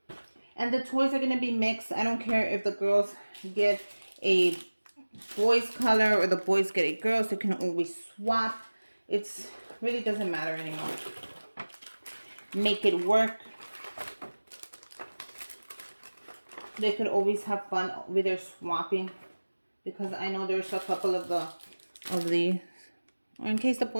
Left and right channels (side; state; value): both; inverted; correlation -1.00